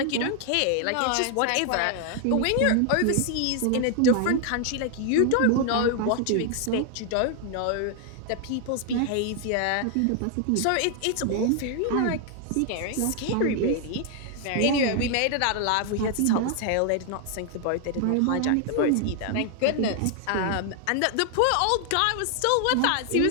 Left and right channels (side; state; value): both; different; correlation 0.00